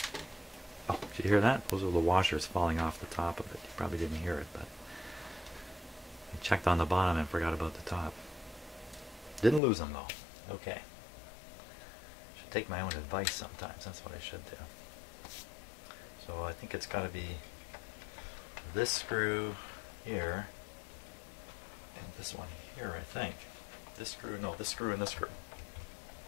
Oh, did you hear that? Those are the washers falling off the top of it. You probably didn't hear it, but I checked on the bottom and forgot about the top. Didn't lose them though. Okay. Take my own advice sometimes. That's what I should do. So I think it's got to be this screw here and this one here, I think. This screw, no, this screw and this screw.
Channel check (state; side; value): drops out; right; at 9.6 s